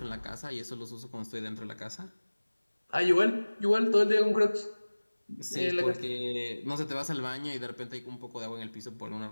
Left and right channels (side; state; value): both; inverted; correlation -1.00